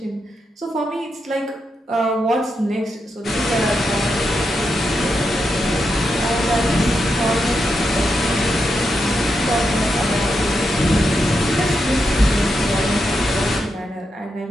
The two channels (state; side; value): normal; both; correlation 0.85